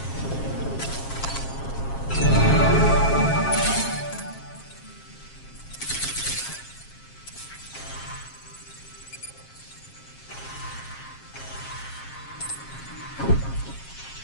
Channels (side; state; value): right; late; 7.4 ms